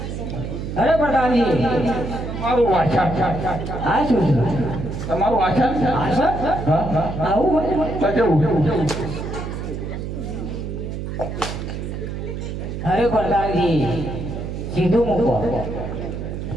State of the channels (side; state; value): right; noise; hum, 6 dB below the sound